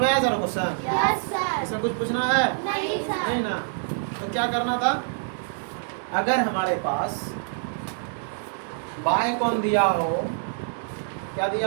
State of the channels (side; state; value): left; silent; 61 dB below the other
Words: आया सर क्वेश्चन? Yes sir. इसमें कुछ पूछना है? नहीं सर। नहीं ना, तो क्या करना था? अगर हमारे पास बाय कौन दिया हो, क्या